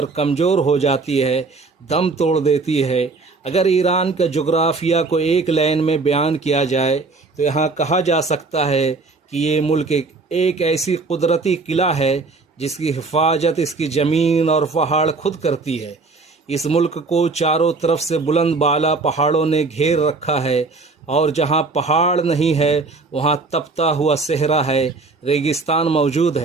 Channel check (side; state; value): left; quieter; 3.9 dB